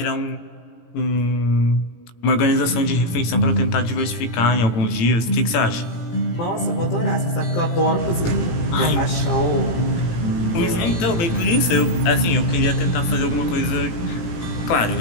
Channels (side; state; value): right; late; 18 ms